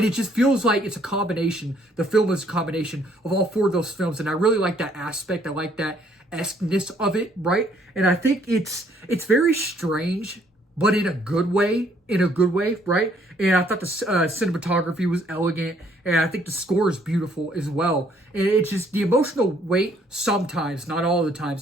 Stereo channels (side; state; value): both; normal; correlation 0.65